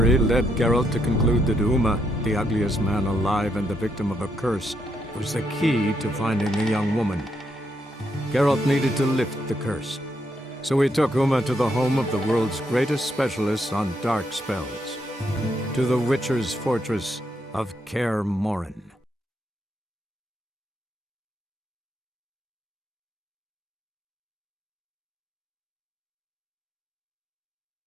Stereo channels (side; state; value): both; normal; correlation 0.77